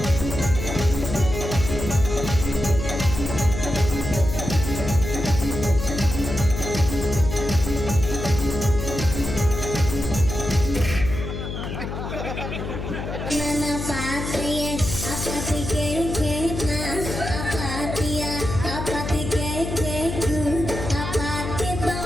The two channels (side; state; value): left; noise; hum, 6 dB below the sound